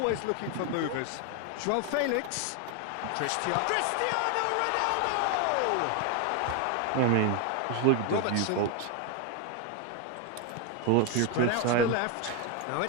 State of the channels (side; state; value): both; different; correlation 0.01